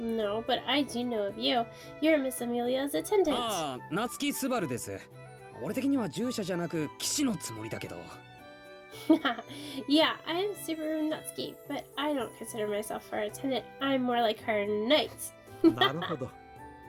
but I do know of you. You're Miss Amelia's attendant. ああ、夏木スバルです。俺的には従者じゃなく騎士のつもりだけど。Yeah, I'm Subaru Natsuki, but I don't consider myself her attendant. I'm more like her knight. なるほど。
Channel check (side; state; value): both; identical; correlation 1.00